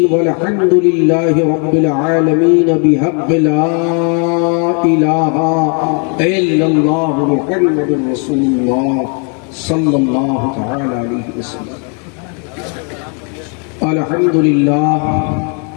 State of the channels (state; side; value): quieter; right; 38.8 dB